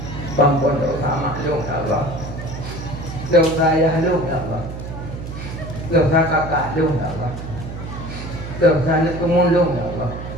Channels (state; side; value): noise; right; hum, 9 dB below the sound